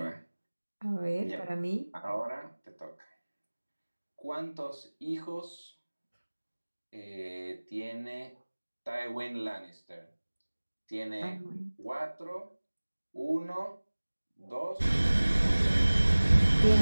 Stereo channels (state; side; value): inverted; both; correlation -1.00